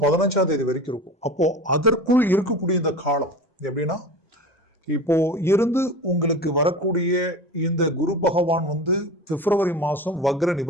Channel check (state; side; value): normal; both; correlation 0.33